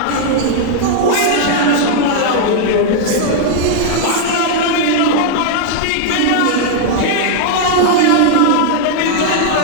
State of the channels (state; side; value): different; both; correlation 0.00